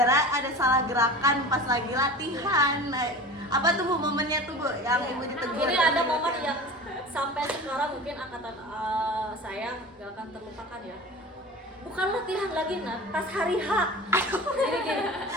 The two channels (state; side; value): normal; both; correlation 0.36